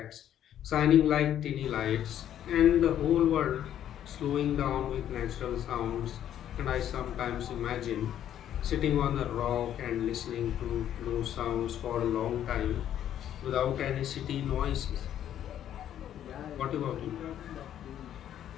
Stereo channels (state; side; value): quieter; right; 10.7 dB